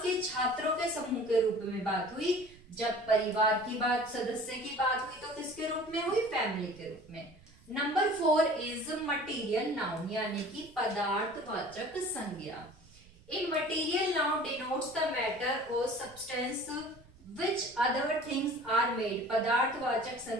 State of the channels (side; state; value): right; noise; rumble, 25 dB below the sound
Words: के छात्रों के समूह के रूप में बात हुई, जब परिवार की बात, सदस्य की बात हुई तो किसके रूप में हुई? फैमिली के रूप में। नंबर 4 इज मटीरियल नाउन, यानी कि पदार्थवाचक संज्ञा। In material noun denotes the matter or substance which other things are made. पदार्थवाचक